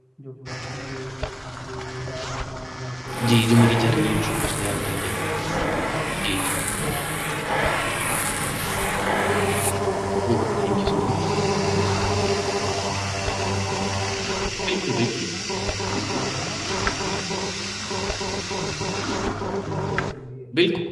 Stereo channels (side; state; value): both; identical; correlation 1.00